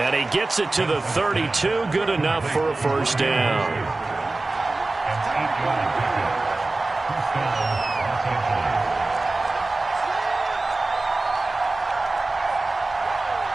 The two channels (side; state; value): left; quieter; 3.2 dB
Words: he gets it to the 32. Good enough for a first down.